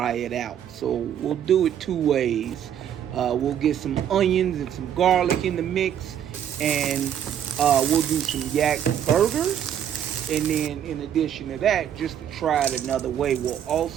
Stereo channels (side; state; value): left; quieter; 9.6 dB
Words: it out. So we'll do it two ways. We'll get some onions and some garlic in the mix, and we'll do some yak burgers. And then in addition to that, just to try it another way, we'll